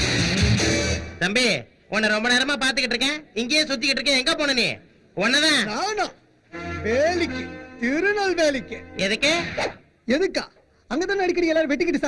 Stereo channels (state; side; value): identical; both; correlation 1.00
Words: தம்பி, உன்னை ரொம்ப நேரமா பாத்துக்கிட்டு இருக்கேன். இங்கேயே சுத்திக்கிட்டு இருக்கேன். எங்க போன நீ? உன்னதான். நானா? வேலிக்கு, திருநெல்வேலிக்கு. எதுக்கு? எதுக்கா? அங்கதானே அடிக்கடி எல்லாரும் வெட்டிக்கிட்டு